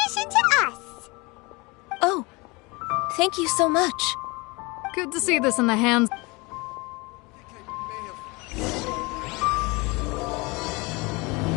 commission to us! Oh, thank you so much. Good to see this in the hands...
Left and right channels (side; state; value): right; quieter; 25.8 dB